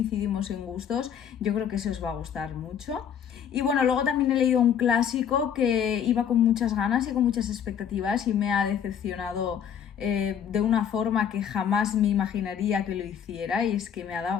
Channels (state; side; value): quieter; right; 8.4 dB